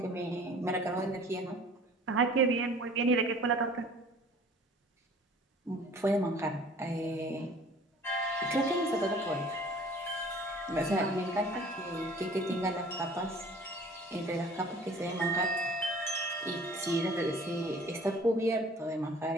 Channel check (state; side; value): normal; both; correlation 0.49